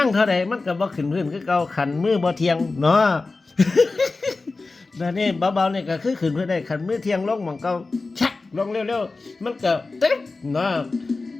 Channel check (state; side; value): quieter; right; 3.7 dB